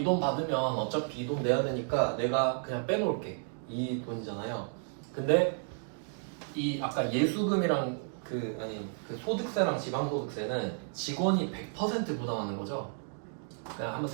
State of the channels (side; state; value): left; silent; 56 dB below the other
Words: 돈 받으면 어차피 이 돈 내야 되니까 내가 그냥 빼놓을게, 이 돈이잖아요. 근데 이 아까 예수금이랑 그 소득세랑 지방소득세는 직원이 100% 부담하는 거죠. 그냥 한번